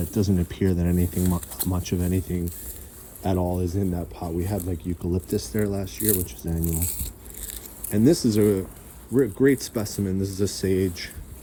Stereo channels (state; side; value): identical; both; correlation 1.00